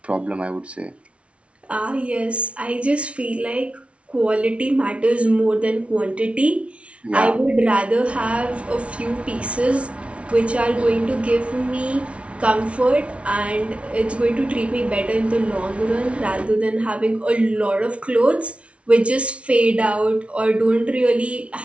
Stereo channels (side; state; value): left; late; 0.061 ms